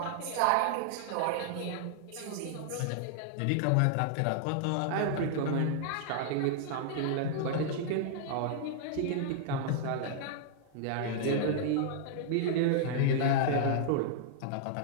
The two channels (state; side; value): different; both; correlation -0.01